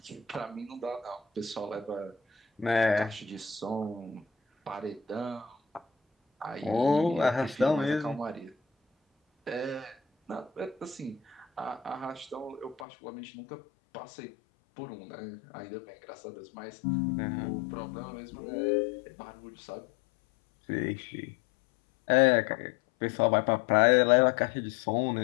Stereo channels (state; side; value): drops out; right; at 12.9 s